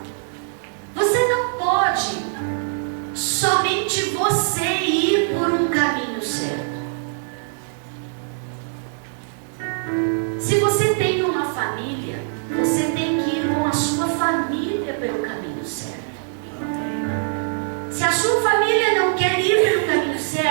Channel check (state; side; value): silent; left; 64 dB below the other